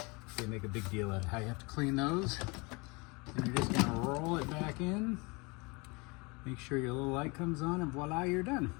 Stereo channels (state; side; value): quieter; right; 27.8 dB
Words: they make a big deal out of how you have to clean those. And you're just gonna roll it back in, make sure your little light comes on, and voila, you're done.